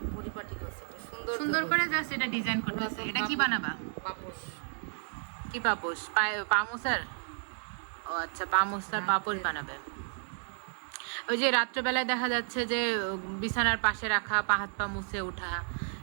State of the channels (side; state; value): left; silent; digital silence